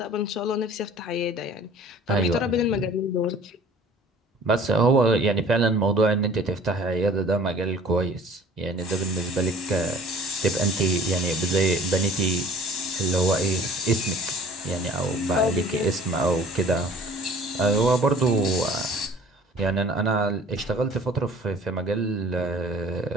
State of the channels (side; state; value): both; normal; correlation 0.48